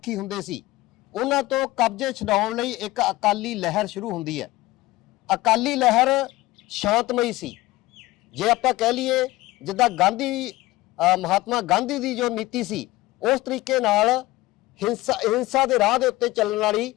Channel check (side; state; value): right; quieter; 18.7 dB